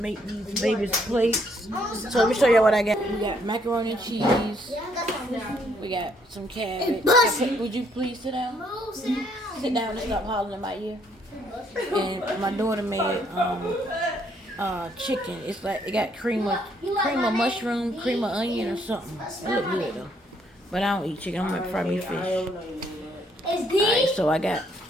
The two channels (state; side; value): normal; both; correlation 0.69